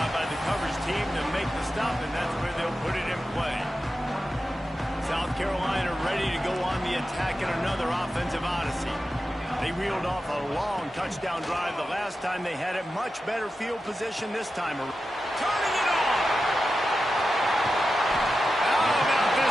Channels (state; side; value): normal; both; correlation 0.92